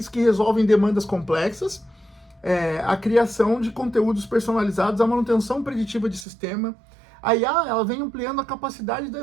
que resolvem demandas complexas, a criação de conteúdos personalizados, a manutenção preditiva de sistema. A IA ela vem ampliando a capacidade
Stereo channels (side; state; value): left; drops out; at 6.2 s